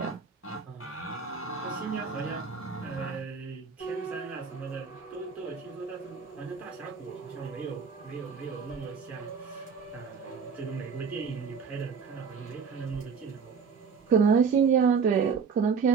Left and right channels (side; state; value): left; quieter; 5.9 dB